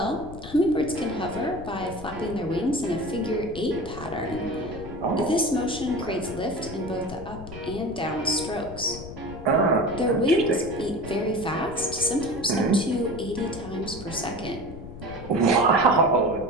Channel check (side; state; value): left; noise; rumble, 12 dB below the sound